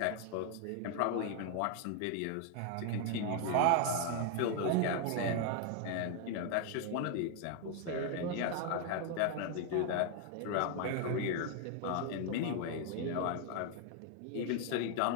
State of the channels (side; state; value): both; different; correlation 0.00